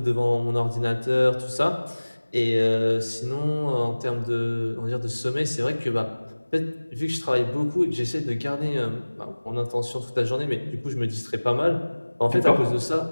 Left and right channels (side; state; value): both; inverted; correlation -1.00